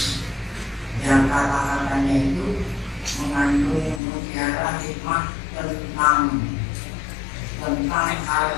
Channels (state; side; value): drops out; right; at 4.0 s